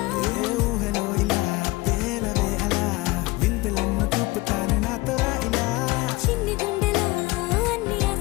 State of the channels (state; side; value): quieter; right; 21.8 dB